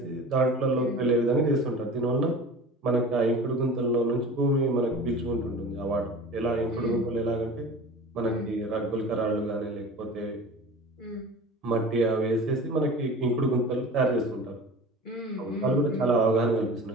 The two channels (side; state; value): both; normal; correlation 0.37